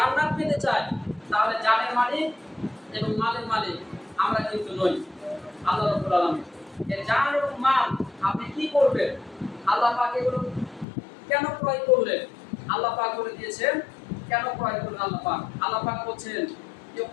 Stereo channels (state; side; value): drops out; right; at 10.9 s